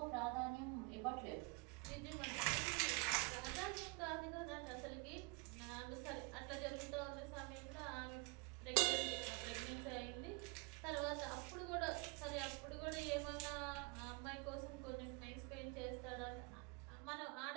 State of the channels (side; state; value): left; quieter; 29.5 dB